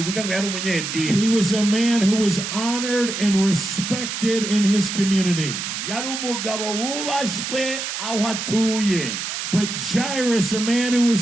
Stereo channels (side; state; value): right; noise; hiss, 5 dB below the sound